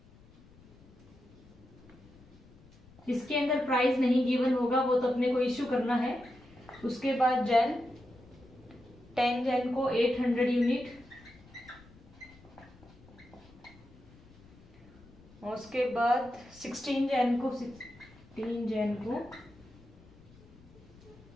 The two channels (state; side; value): noise; left; rumble, 24 dB below the sound